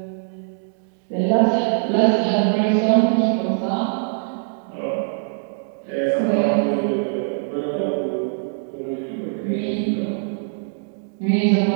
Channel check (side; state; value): left; silent; digital silence